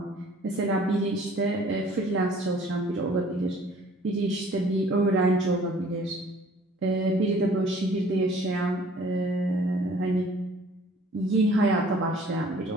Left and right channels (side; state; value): both; normal; correlation 0.54